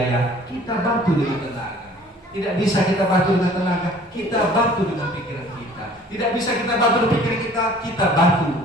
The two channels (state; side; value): normal; both; correlation 0.51